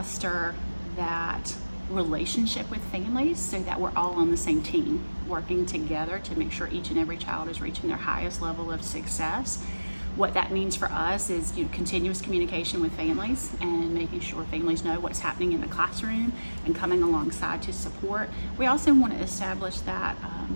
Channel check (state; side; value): inverted; both; correlation -1.00